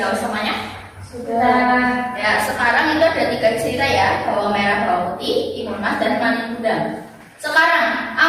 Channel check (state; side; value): identical; both; correlation 1.00